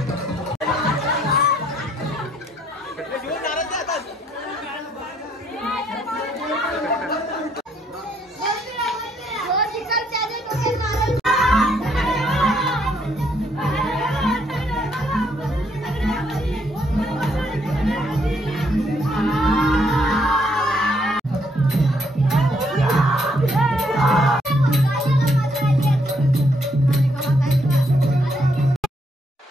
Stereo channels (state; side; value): normal; both; correlation 0.71